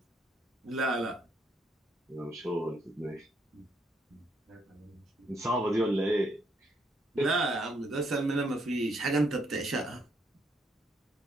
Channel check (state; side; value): normal; both; correlation 0.73